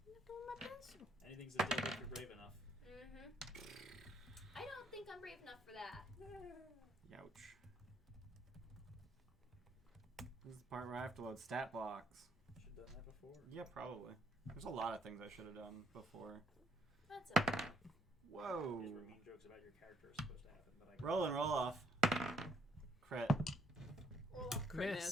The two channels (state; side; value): normal; both; correlation 0.70